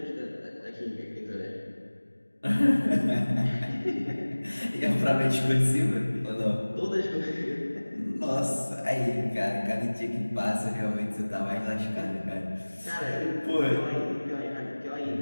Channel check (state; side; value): inverted; both; correlation -1.00